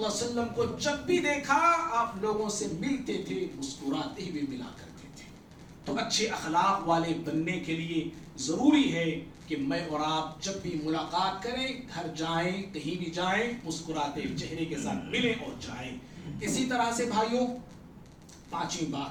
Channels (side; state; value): both; identical; correlation 1.00